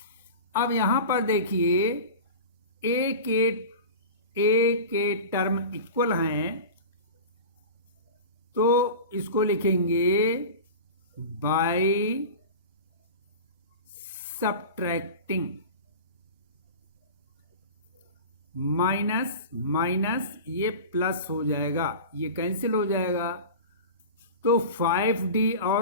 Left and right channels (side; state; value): both; inverted; correlation -0.32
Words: अब यहां पर देखिए A के टर्म इक्वल हैं तो इसको लिखेंगे बाय सब्ट्रैक्टिंग, माइनस ये प्लस हो जाएगा, ये कैंसिल हो जाएगा, तो 5D